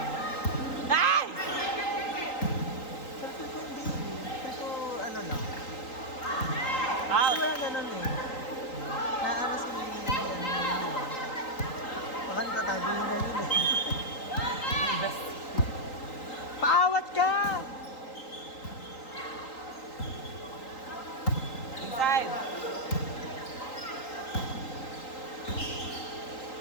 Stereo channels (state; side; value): late; right; 3.8 ms